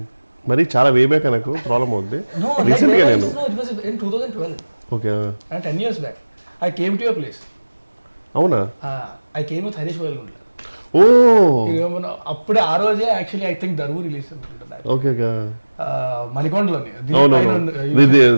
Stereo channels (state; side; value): inverted; both; correlation -1.00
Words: మరి చాలా way back నాకు problem అవుద్ది. No, like no, it was in 2012. Okay. And 10 years back I came to your place. అవునా? I came with Harish Boyalgundla. అప్పుడే ఆ రోజే actually I think Daruvu release అనుకుంటా. Okay okay. మణికొండలోని